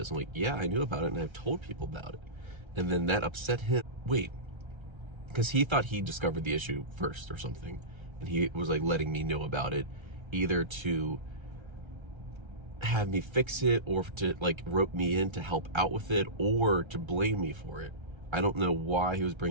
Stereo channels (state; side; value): late; left; 1.3 ms